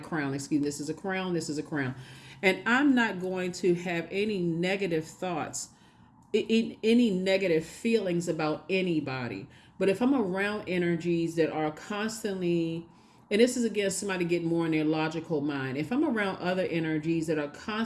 Excuse me, this is a crown, this is a crown. And I'm not going to have any negative thoughts, any negative feelings about anybody. But if I'm around energies that are constantly, and this is again somebody getting more in their logical mind, if I'm around other energies that are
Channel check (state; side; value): identical; both; correlation 1.00